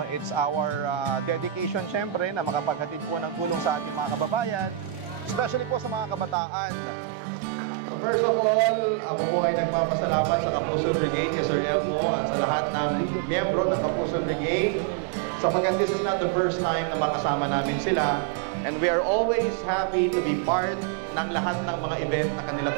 It's our dedication, syempre, na makapaghatid po ng tulong sa ating mga kababayan, especially po sa mga kabataan. So first of all, ako po ay nagpapasalamat sa Kapuso Brigade, Sir Elmo, at sa lahat ng miyembro ng Kapuso Brigade. Sapagkat this is not the first time na makasama namin sila, and we are always happy to be part ng lahat ng mga event na kanila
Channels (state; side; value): drops out; left; at 6.4 s